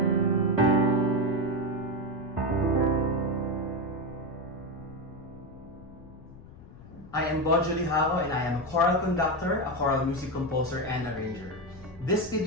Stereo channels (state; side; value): noise; left; rumble, 19 dB below the sound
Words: I am Bojo Lijauco and I am a choral conductor, a choral music composer, and arranger. This